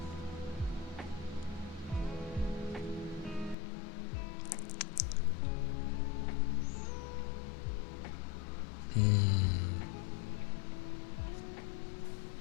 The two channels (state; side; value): drops out; right; at 3.6 s